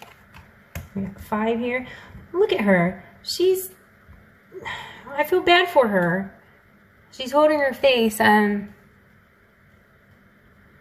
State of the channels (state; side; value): identical; both; correlation 1.00